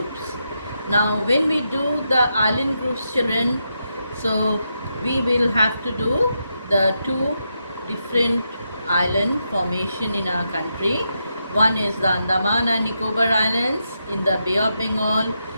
Now, when we do the island groups, children, so we will have to do the two different island formation in our country. One is the Andaman and Nicobar Islands in the Bay of Bengal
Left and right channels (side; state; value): both; inverted; correlation -0.84